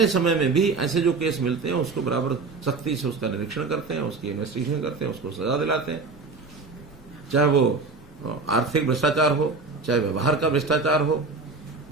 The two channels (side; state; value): left; quieter; 4.2 dB